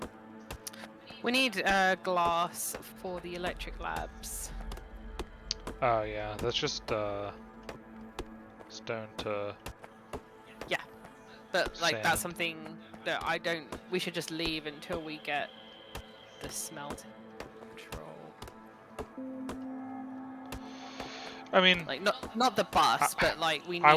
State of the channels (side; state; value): both; identical; correlation 1.00